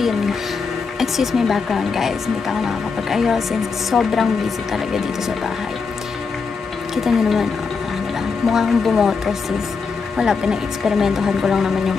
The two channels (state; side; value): quieter; right; 5.0 dB